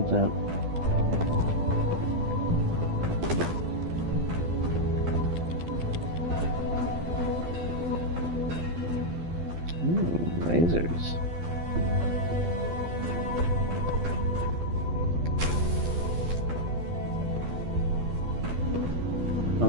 that's that. lasers. Oh,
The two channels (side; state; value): left; late; 12 ms